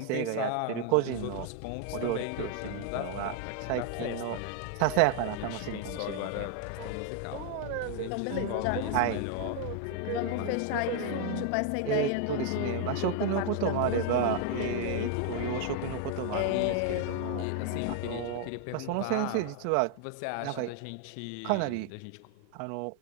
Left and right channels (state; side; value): different; both; correlation 0.00